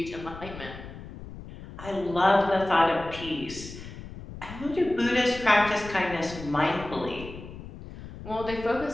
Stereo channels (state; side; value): noise; left; rumble, 13 dB below the sound